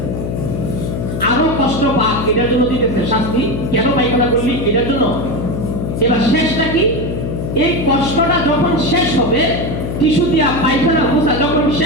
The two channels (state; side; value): noise; left; hum, 3 dB below the sound